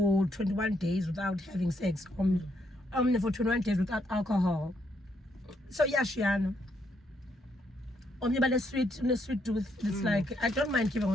21 days without having sex, for 21 days without alcohol. So yeah, Shiano. But a sweet tooth. It's like I don't mind giving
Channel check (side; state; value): both; normal; correlation 0.75